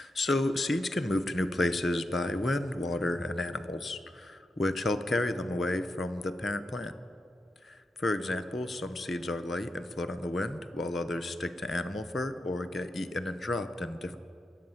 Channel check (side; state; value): both; normal; correlation 0.86